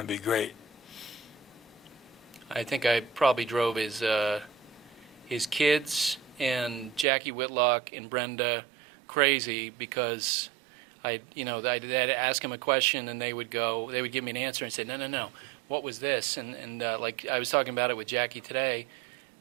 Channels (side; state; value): left; drops out; at 7.1 s